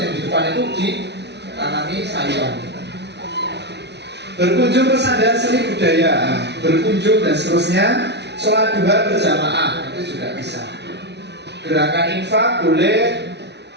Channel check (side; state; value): left; late; 0.50 ms